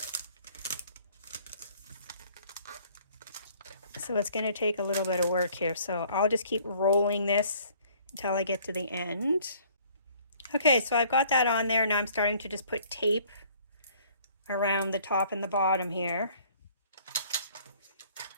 So it's going to take a little bit of work here. So I'll just keep rolling this until I get to the end. Okay, so I've got that on there. Now I'm starting to just put tape around the top and the bottom here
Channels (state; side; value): inverted; both; correlation -0.57